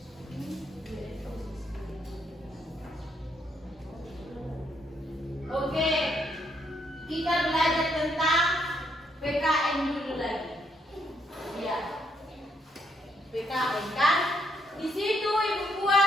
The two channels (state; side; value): normal; both; correlation 0.73